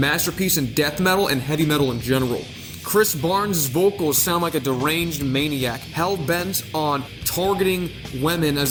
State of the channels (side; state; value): both; identical; correlation 1.00